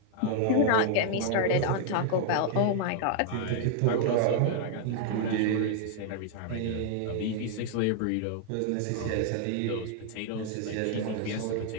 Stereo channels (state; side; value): different; both; correlation 0.00